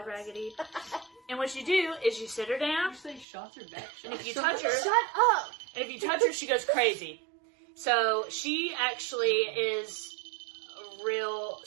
Raggedy. And what you do is you sit her down, You say shots or back and if shots? you touch her, Shut up! she goes crazy. So she actually is a real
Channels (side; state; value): left; drops out; at 3.2 s